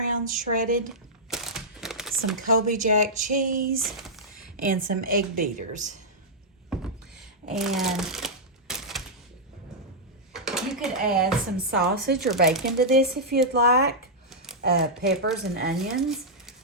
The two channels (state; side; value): normal; both; correlation -0.08